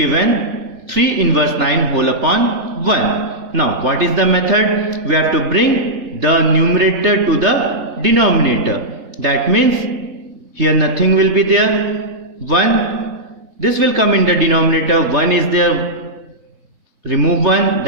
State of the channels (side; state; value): left; late; 3.3 ms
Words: 3 inverse 9 whole upon 1. Now what is the method? We have to bring the numerator to the denominator. That means here nothing will be there. 1. This will come in the denominator. 1 is there. Remove 1.